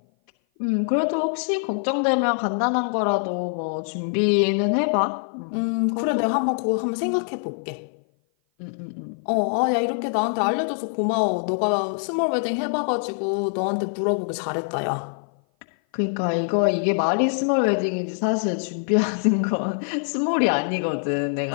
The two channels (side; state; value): right; silent; 56 dB below the other